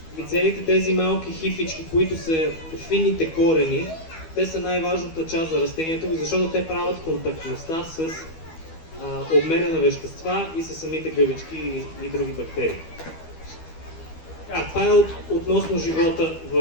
И целите тези малки хифички, които са финните корени, те са най-важната част за растението, защото те правят контактността с обмена на вещества и с самите гъбички и други бактерии. Това е относно живота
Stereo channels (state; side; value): late; right; 12 ms